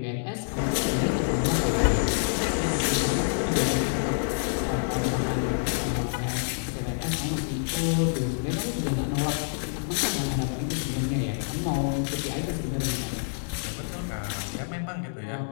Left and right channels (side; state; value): right; silent; digital silence